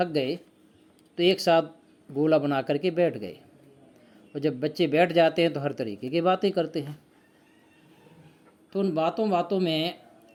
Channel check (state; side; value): identical; both; correlation 1.00